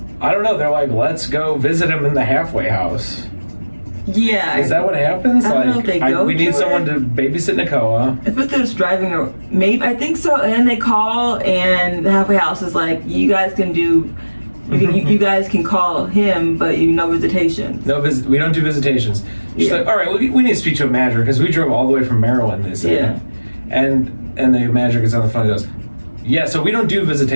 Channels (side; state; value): both; inverted; correlation -1.00